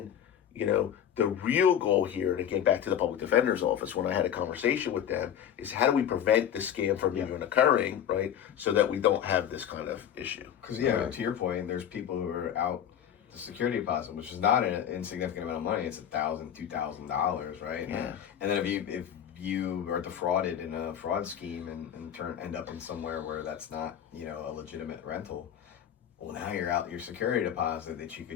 the real goal here, and again, back to the public defender's office, when I had a conversation with them, is how do we prevent this scam from even occurring, right? So that we don't have this kind of issue. Because, to your point, there's people who are out the security deposit, which is not an insignificant amount of money. It's $1,000, $2,000, right? Yeah. And then if you are defrauded in a fraud scheme and end up in somewhere where that's not, a legitimate rental, well, now you're out your security deposit that you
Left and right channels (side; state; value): right; quieter; 9.6 dB